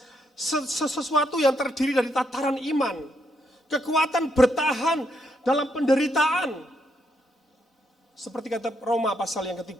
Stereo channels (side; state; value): both; normal; correlation 0.77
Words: Sesuatu yang terdiri dari tataran iman. Kekuatan bertahan dalam penderitaan. Seperti kata Roma pasal yang